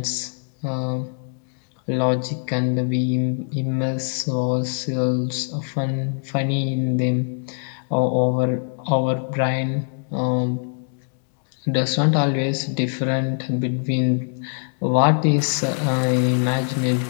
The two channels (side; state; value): right; silent; digital silence